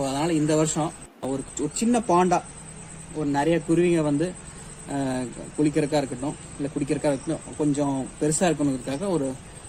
அதனால் இந்த வருஷம் ஒரு சின்ன பாண்டா ஒரு நிறைய குருவிங்க வந்து குளிக்கிறதுக்காக இருக்கட்டும், இல்லை குடிக்கிறதுக்காக இருக்கட்டும், கொஞ்சம் பெருசாக இருக்கணுங்கிறதுக்காக ஒரு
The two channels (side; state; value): both; identical; correlation 1.00